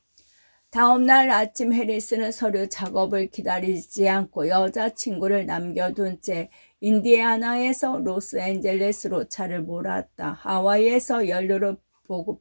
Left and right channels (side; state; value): both; inverted; correlation -1.00